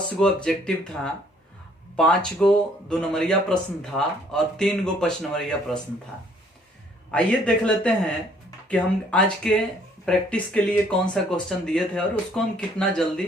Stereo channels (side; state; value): both; normal; correlation 0.62